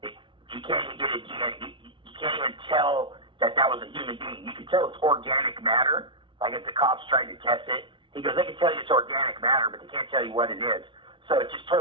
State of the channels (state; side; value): late; left; 0.24 ms